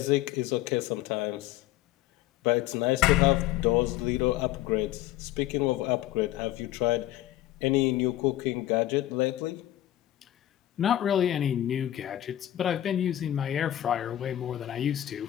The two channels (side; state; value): right; quieter; 13.7 dB